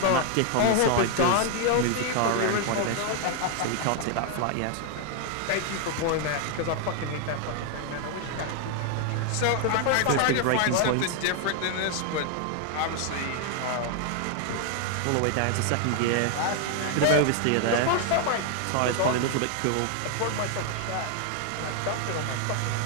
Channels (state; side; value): different; both; correlation 0.00